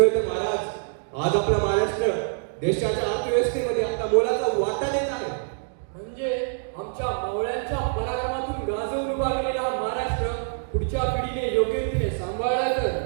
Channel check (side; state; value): left; silent; digital silence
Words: तर महाराज, आज आपला महाराष्ट्र देशाच्या अर्थव्यवस्थेमध्ये आपला मोलाचा वाटा देत आहे. म्हणजे आमच्या मावळ्यांच्या पराक्रमातून गाजवून उभा केलेला हा महाराष्ट्र पुढच्या पिढीने योग्य रीतीने सांभाळला तर.